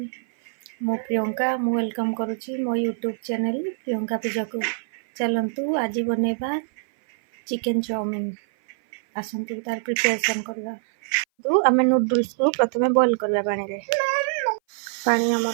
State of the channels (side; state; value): left; silent; 58 dB below the other